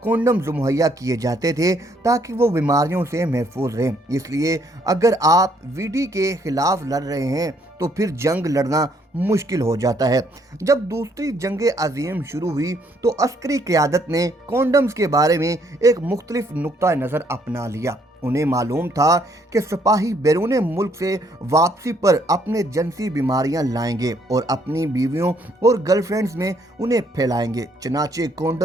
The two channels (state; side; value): normal; both; correlation 0.68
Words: कॉन्डम्स मुहैया किए जाते थे ताकि वो बीमारियों से महफूज रहें। इसलिए अगर आप वीडी के खिलाफ लड़ रहे हैं तो फिर जंग लड़ना मुश्किल हो जाता है। जब दूसरी जंग अजीम शुरू हुई तो अस्करी क़यादत ने कॉन्डम्स के बारे में एक मुख्तलिफ नुक्ता नज़र अपना लिया। उन्हें मालूम था कि सिपाही बैरून मुल्क से वापसी पर अपने जिनसी बीमारियां लाएंगे और अपनी बीवियों और गर्लफ्रेंड्स में उन्हें फैलाएंगे। चनाचे